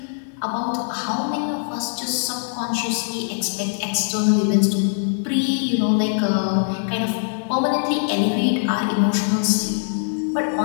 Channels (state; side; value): silent; right; digital silence